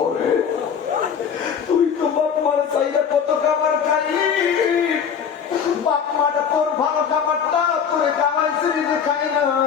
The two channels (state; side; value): quieter; right; 7.3 dB